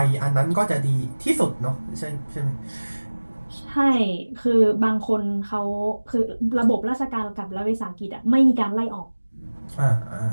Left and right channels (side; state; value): both; inverted; correlation -1.00